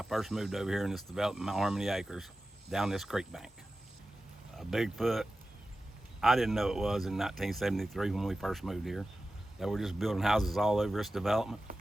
first moved over here in this development, Mount Harmony Acres, down this creek bank. A Bigfoot, I didn't know it was in 1973 when we first moved here. They were just building houses all over this development.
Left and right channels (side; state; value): both; normal; correlation 0.94